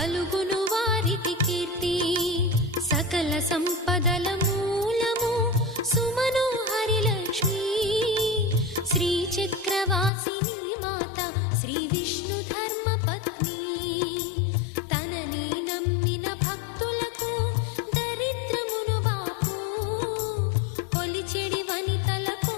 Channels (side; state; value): right; drops out; at 10.1 s